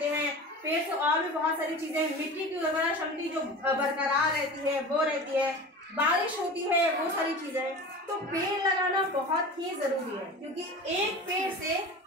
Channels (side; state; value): both; normal; correlation 0.34